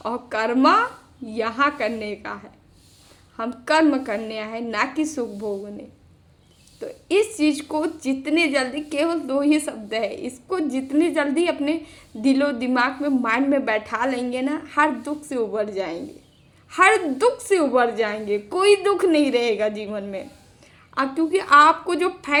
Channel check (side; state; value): both; identical; correlation 1.00